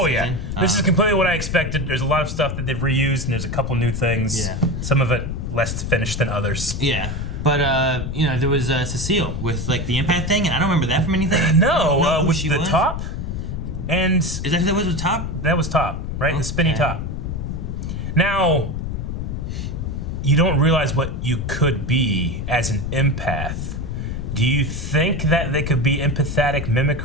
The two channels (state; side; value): noise; left; rumble, 4 dB below the sound